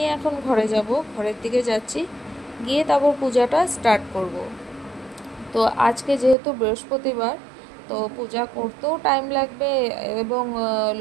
এখন ঘরে যাব, ঘরের দিকে যাচ্ছি, গিয়ে তারপর পূজাটা স্টার্ট করব। তো আজকে যেহেতু বৃহস্পতিবার, তো পূজা করতেও টাইম লাগবে এবং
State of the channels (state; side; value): drops out; left; at 6.4 s